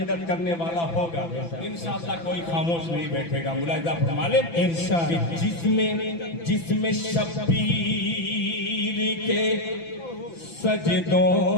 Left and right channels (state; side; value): late; right; 6.0 ms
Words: करने वाला होगा इंशाअल्लाह कोई खामोश नहीं बैठेगा। मुलाहिजा फरमा लें इरशाद। जिसमें शब्बीर के सजदों